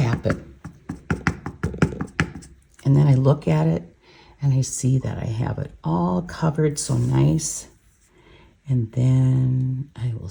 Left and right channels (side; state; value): both; identical; correlation 1.00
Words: it. And then I look at it, And I see that I have it all covered so nice. And then I will